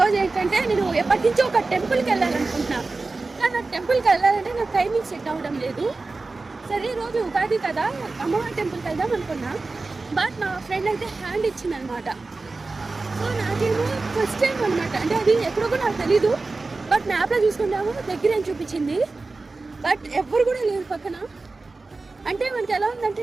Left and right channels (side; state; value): left; quieter; 3.6 dB